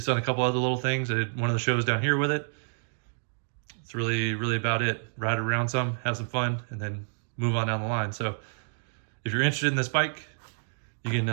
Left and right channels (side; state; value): left; silent; digital silence